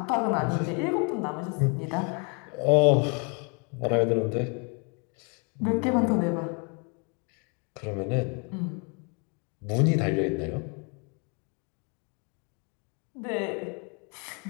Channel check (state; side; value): quieter; right; 35.1 dB